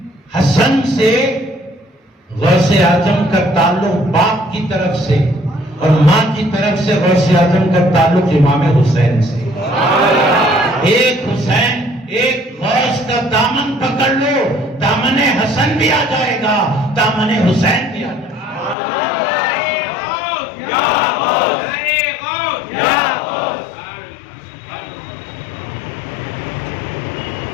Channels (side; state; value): right; drops out; at 18.8 s